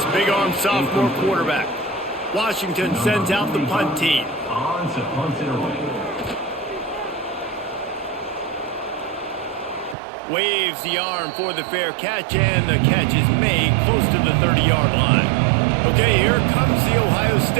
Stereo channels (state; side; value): drops out; left; at 10.0 s